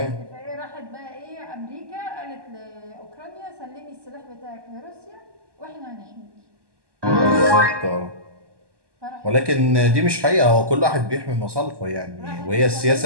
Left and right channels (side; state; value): left; late; 1.2 ms